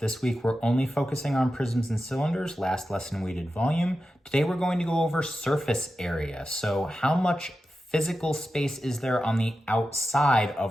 this week we're only focusing on prisms and cylinders. Last lesson we did volume. Today we're going to go over surface area. So how much physical space is there on the outside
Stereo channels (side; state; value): both; normal; correlation 0.92